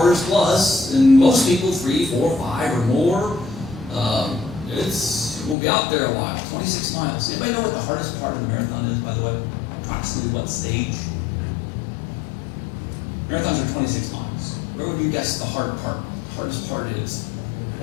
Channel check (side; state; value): right; drops out; at 5.6 s